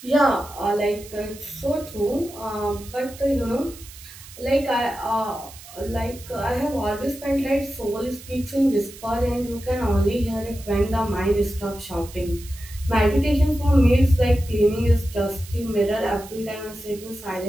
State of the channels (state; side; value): noise; right; hiss, 18 dB below the sound